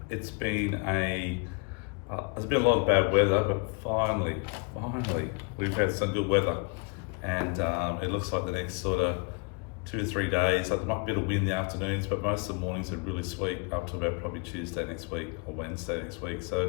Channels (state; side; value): quieter; right; 32.4 dB